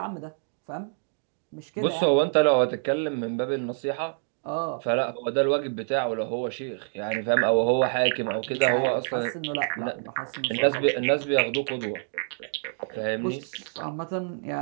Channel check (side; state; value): left; silent; digital silence